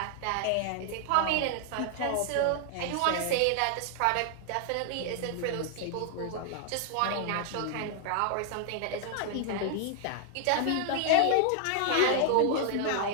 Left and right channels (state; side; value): different; both; correlation 0.00